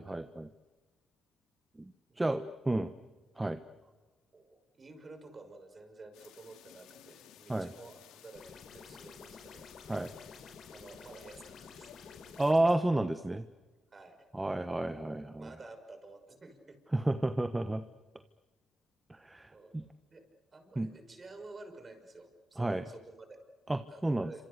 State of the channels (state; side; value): normal; both; correlation 0.98